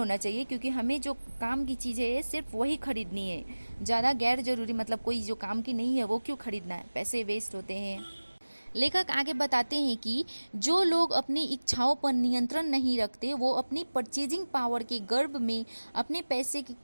चाहिए, क्योंकि हमें जो काम की चीज़ है सिर्फ वही खरीदनी है। ज़्यादा गैर ज़रूरी मतलब कोई जो काम की नहीं है वो क्यों खरीदना है, पैसे वेस्ट होते हैं। लेखक आगे बताते हैं कि जो लोग अपनी इच्छाओं पर नियंत्रण नहीं रखते वो अपनी परचेजिंग पावर के गर्भ में अपने पैसे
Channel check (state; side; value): inverted; both; correlation -1.00